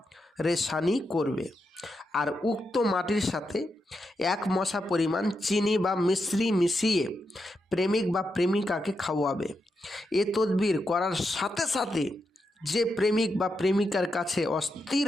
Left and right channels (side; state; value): both; normal; correlation 0.85